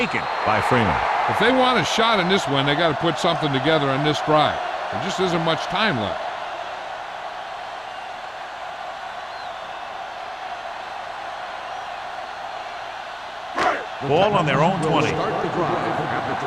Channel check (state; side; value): identical; both; correlation 1.00